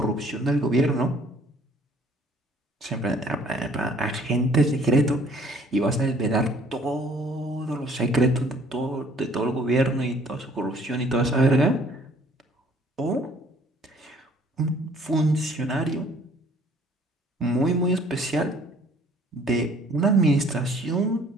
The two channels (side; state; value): both; normal; correlation 0.58